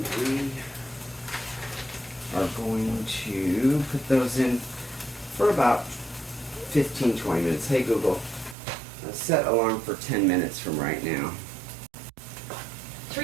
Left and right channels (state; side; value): drops out; left; at 8.6 s